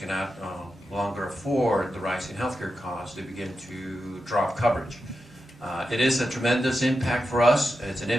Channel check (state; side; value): normal; both; correlation 0.89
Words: longer afford the rising healthcare costs, they begin to drop coverage. It is a tremendous impact for us. It's an